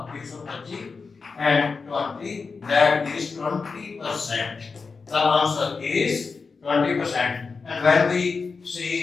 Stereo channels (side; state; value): right; quieter; 4.7 dB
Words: and 20, that is 20%. The answer is 20%. And when we